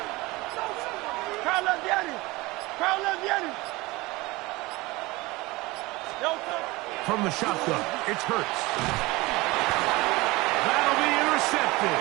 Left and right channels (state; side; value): quieter; left; 21.8 dB